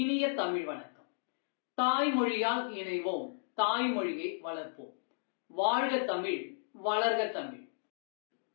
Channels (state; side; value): silent; right; digital silence